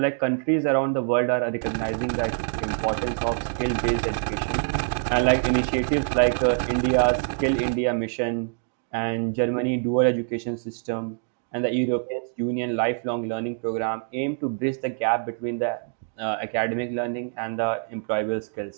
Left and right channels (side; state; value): left; silent; digital silence